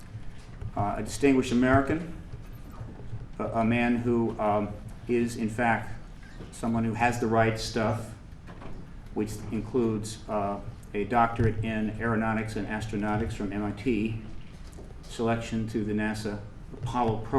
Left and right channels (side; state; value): both; identical; correlation 1.00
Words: distinguished American, a man who is in fact someone who has the right stuff, which includes a doctorate in aeronautics and astronautics from MIT, selection to the NASA Apollo